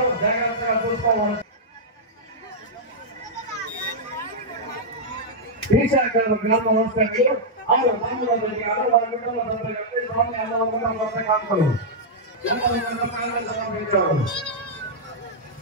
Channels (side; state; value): both; normal; correlation -0.07